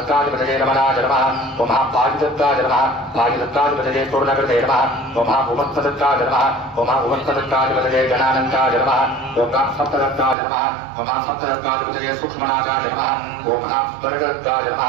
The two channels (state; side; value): drops out; left; at 10.4 s